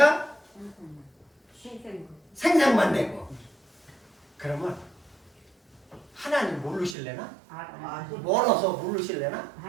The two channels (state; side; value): drops out; left; at 7.0 s